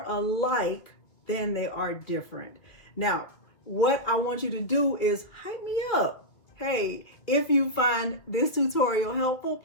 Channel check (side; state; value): right; late; 2.4 ms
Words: alike than they are different. Now, what I want you to do is hype me up. Hey, if you find this tutorial helpful,